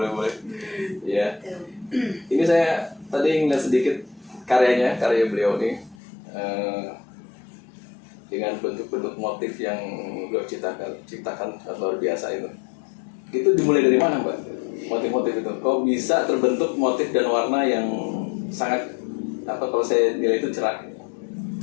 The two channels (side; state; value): right; drops out; at 6.0 s